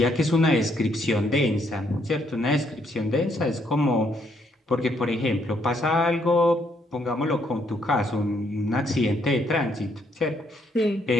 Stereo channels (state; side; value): normal; both; correlation 0.72